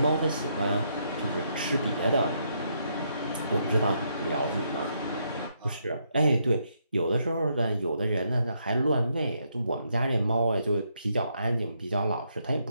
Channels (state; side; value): inverted; both; correlation -0.76